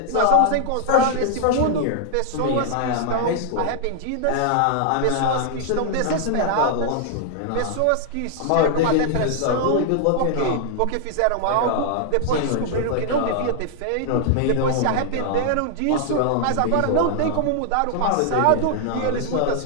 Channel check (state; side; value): different; both; correlation -0.01